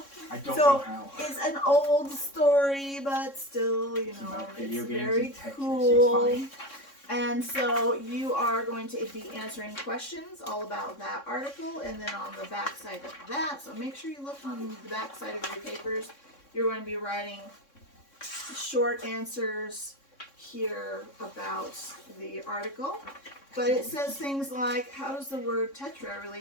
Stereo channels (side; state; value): right; late; 3.6 ms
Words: at I don't So, know how. It's an old story, but still, you It's know, about it's video games very and Tetris. cool. It's fine. And so you are going to be answering questions all about that article, and then on the back side of that, so make sure you look on the back side of your papers. You're going to be writing short answers here about the article. But it says things like, how does the word tetra